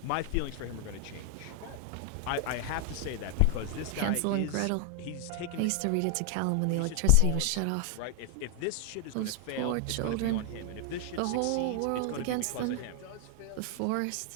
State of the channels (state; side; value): different; both; correlation 0.00